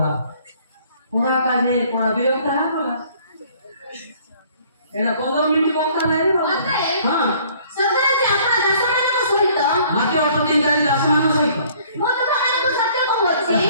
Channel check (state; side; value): inverted; both; correlation -0.57